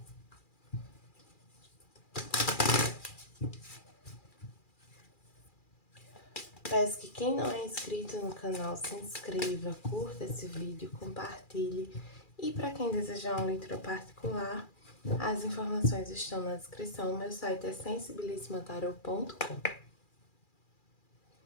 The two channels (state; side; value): late; right; 2.4 ms